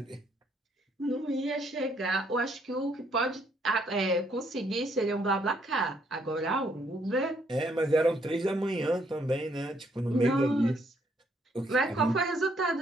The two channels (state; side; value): normal; both; correlation 0.70